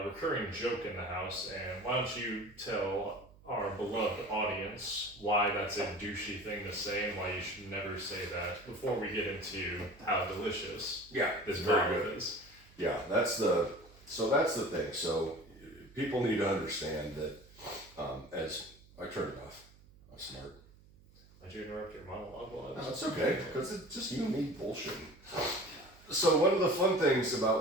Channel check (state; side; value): noise; right; hum, 25 dB below the sound